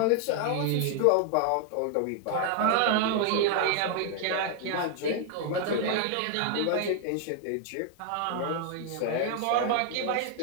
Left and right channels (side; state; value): both; different; correlation 0.00